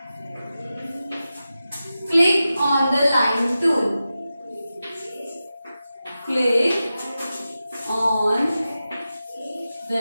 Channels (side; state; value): both; inverted; correlation -0.93